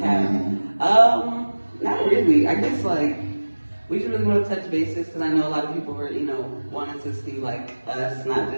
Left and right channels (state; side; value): inverted; both; correlation -1.00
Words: Not really. I guess we just really want to touch bases because I know a lot of people were, wanting to see like us, not